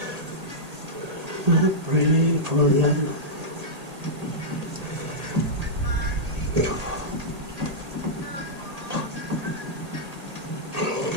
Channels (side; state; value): left; late; 1.8 ms